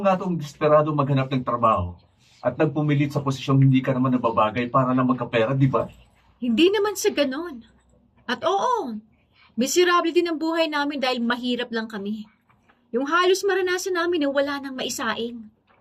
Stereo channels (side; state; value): both; identical; correlation 1.00